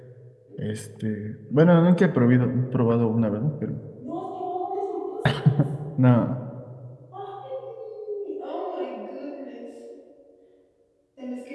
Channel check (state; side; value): identical; both; correlation 1.00